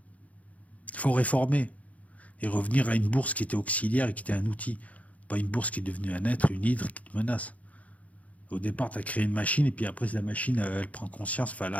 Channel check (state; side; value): late; right; 0.069 ms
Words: Il faut réformer et revenir à une bourse qui était auxiliaire et qui était un outil, pas une bourse qui est devenue un être, une hydre qui te menace. Au départ, tu as créé une machine, et puis après, la machine, elle prend conscience. Enfin,